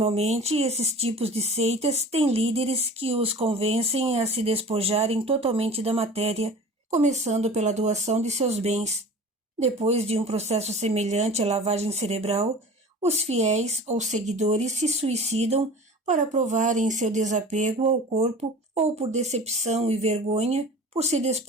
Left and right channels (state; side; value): normal; both; correlation 0.40